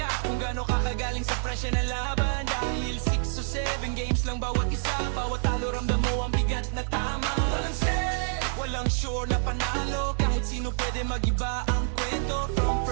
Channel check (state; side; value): silent; left; digital silence